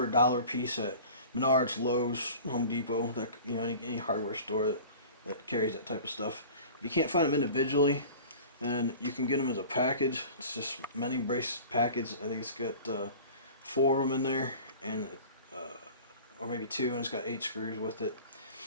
$1 a piece at Menards, Lowe's, Home Depot, any hardware store that carries that type of stuff. If you can't find them individually, then you can get them as a package. It's just mending brace package. I think it's got 4 of them in there, and or maybe 2, and it's got 8 screws with it.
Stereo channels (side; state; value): both; inverted; correlation -0.41